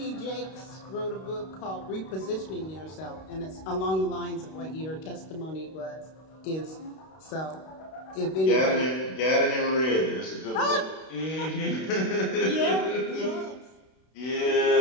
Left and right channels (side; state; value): right; late; 32 ms